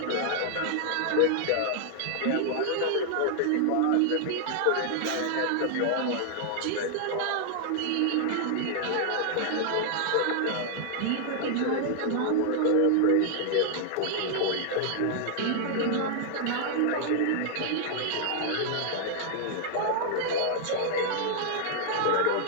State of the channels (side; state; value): both; different; correlation -0.01